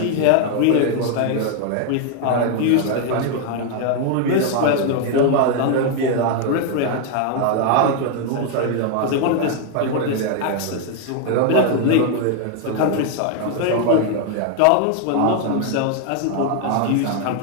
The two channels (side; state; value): both; different; correlation 0.00